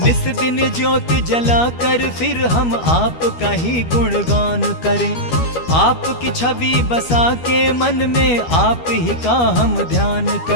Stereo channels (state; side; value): late; right; 12 ms